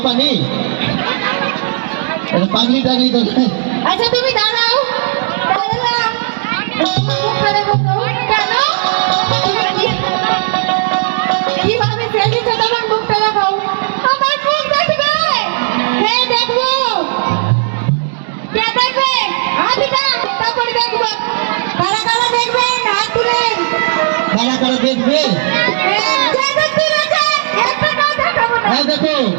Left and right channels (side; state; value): left; silent; digital silence